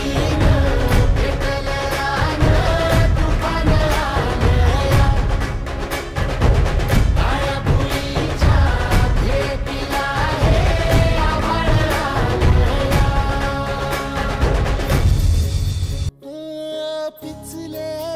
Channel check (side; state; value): both; identical; correlation 1.00